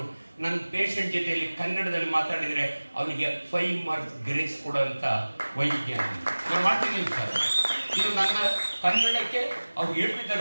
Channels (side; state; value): both; inverted; correlation -1.00